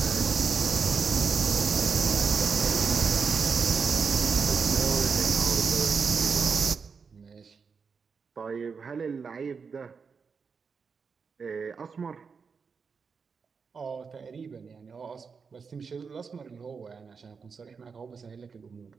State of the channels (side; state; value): left; quieter; 5.5 dB